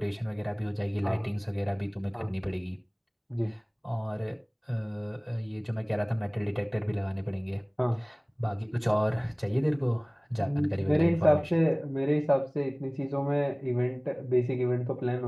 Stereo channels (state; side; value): identical; both; correlation 1.00